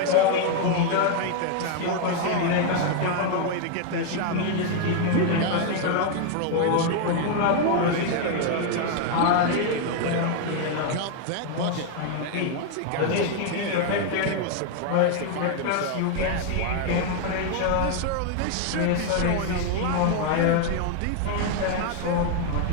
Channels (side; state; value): both; different; correlation 0.00